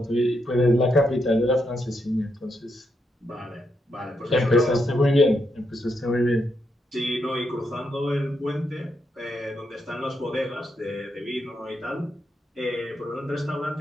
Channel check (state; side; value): normal; both; correlation 0.81